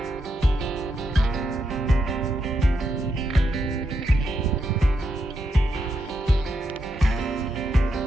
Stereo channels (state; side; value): normal; both; correlation 0.82